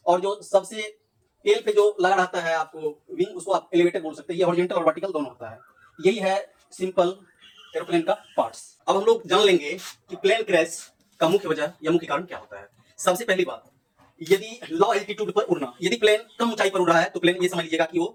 और जो सबसे टेल पे जो लगा रहता है आपको विंग, उसको आप एलिवेटर बोल सकते हैं। ये हॉरिजॉन्टल और वर्टिकल दोनों होता है। यही है सिंपल एरोप्लेन का पार्ट्स। अब हम लोग जान लेंगे कि प्लेन क्रैश का मुख्य वजह या मुख्य कारण क्या होता है। सबसे पहली बात, यदि लो एल्टीट्यूड पर उड़ना, यदि प्लेन कम ऊंचाई पर उड़ रहा है तो प्लेन ये समझ लीजिएगा कि वो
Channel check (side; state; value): both; identical; correlation 1.00